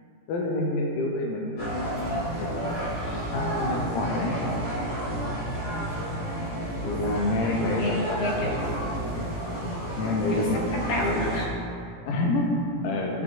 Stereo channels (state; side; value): late; right; 17 ms